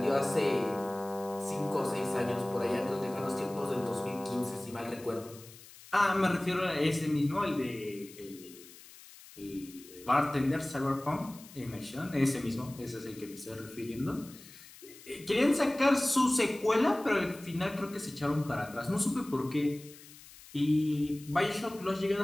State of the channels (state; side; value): noise; left; hiss, 20 dB below the sound